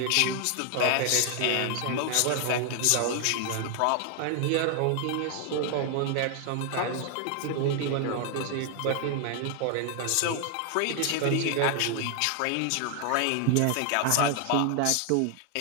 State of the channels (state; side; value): different; both; correlation 0.00